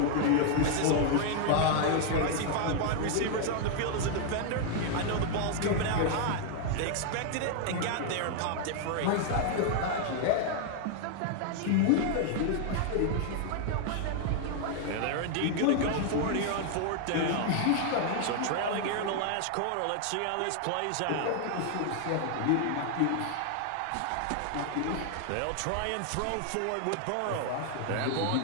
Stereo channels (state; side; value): different; both; correlation 0.00